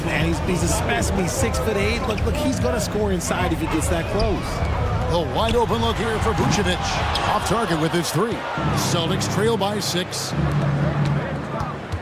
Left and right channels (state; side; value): identical; both; correlation 1.00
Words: man. He's a specimen. He's 6'8". Look, he's going to score inside if he gets that close. A wide open look here for Vucevic. Off target with his three. Celtics trail by 6.